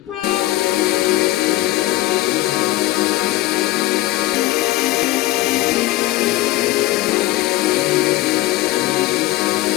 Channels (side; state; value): right; quieter; 17.3 dB